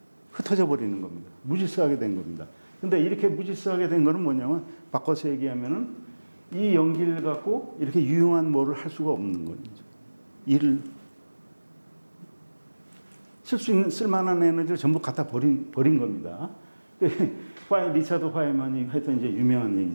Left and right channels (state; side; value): inverted; both; correlation -1.00